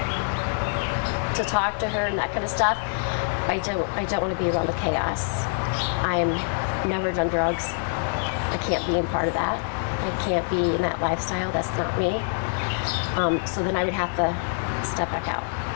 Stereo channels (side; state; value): right; silent; digital silence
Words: to talk to her and that kind of stuff. I don't want to be around the chaos. I'm never done drugs. I can't be in part of that. I can't be in that lifestyle. That's not me. So then I would have to step back out.